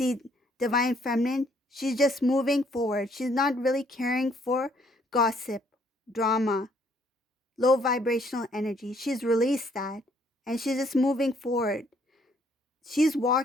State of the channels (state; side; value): normal; both; correlation 0.66